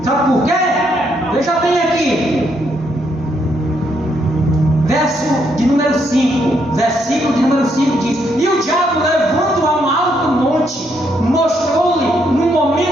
Sabe por quê? Veja bem aqui. Verso de número 5. Versículo de número 5 diz: e o diabo, levando a um alto monte, mostrou-lhe num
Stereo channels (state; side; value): normal; both; correlation 0.75